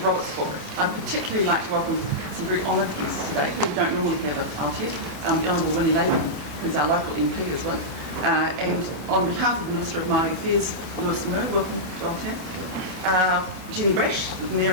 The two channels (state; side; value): late; left; 39 ms